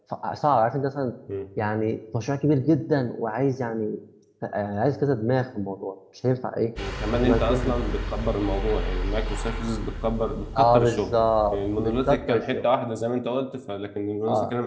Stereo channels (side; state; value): both; identical; correlation 1.00